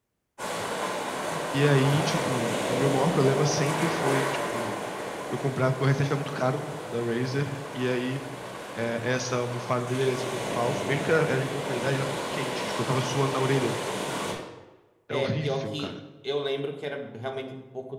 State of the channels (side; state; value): both; identical; correlation 1.00